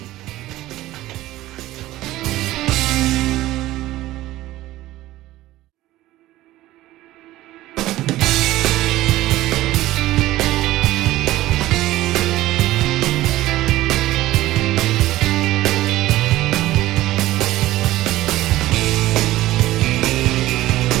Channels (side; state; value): left; quieter; 16.2 dB